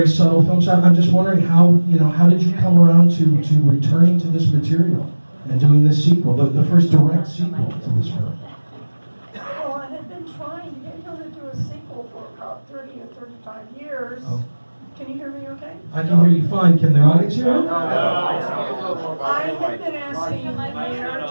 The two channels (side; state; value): both; inverted; correlation -1.00